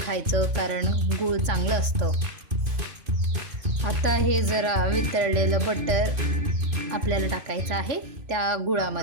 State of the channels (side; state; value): left; late; 2.5 ms